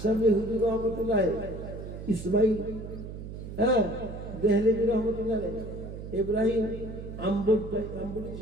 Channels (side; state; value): right; noise; hum, 10 dB below the sound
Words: হুজুর রহমতুল্লাহ, ইসমাইল দেহলেভি রহমতুল্লাহ, ইব্রাহিম আম্বুটি